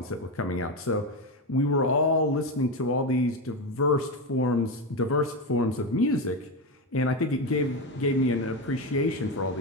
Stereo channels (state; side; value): normal; both; correlation 0.14